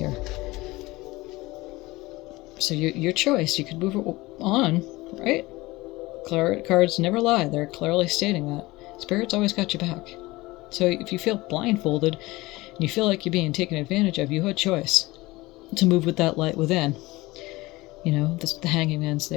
So your choice. You could move on, right? Cards never lie. They're clearly stating that. Spirit's always got your back. So if you feel blindfolded and you feel like you're being taken advantage of, you had choice to move with that light within. You know, the hanging man's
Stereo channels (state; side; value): quieter; right; 20.5 dB